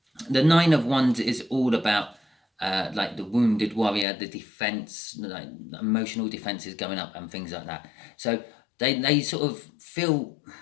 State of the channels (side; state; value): right; drops out; at 4.0 s